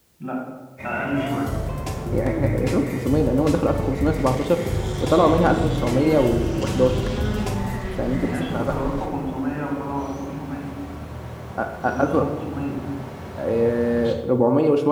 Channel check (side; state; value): both; identical; correlation 1.00